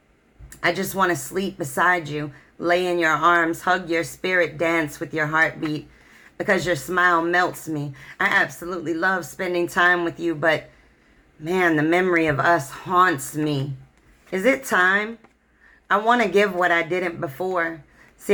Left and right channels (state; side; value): identical; both; correlation 1.00